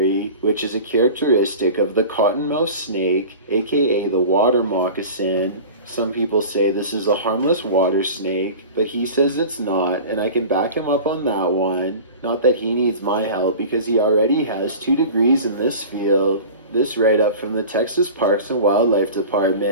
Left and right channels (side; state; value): both; inverted; correlation -0.37